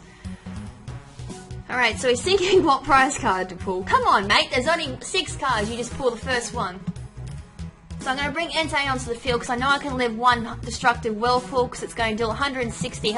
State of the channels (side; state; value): both; identical; correlation 1.00